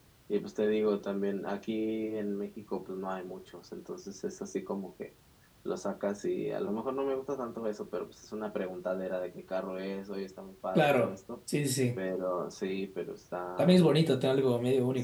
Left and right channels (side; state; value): both; identical; correlation 1.00